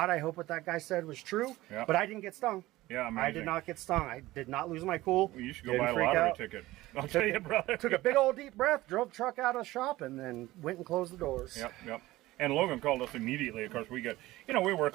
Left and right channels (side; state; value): left; quieter; 17.7 dB